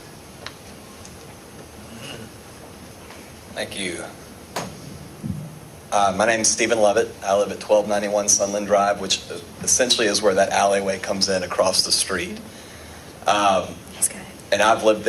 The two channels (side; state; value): both; identical; correlation 1.00